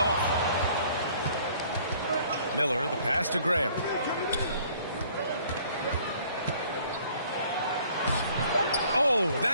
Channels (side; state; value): both; inverted; correlation -0.57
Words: Miller, the pass to Grant. Oh,